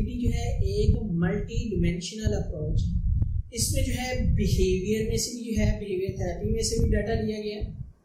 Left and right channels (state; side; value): identical; both; correlation 1.00